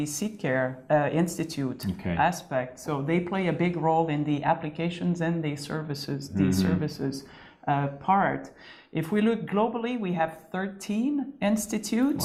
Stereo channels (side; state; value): both; identical; correlation 1.00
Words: Seedcare Institute aspect. So they play a big role in the applications and the services, part. If we look globally, we have 13